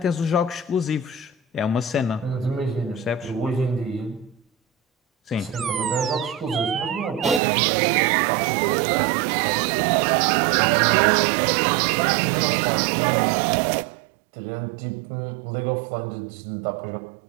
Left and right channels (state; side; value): drops out; left; at 7.4 s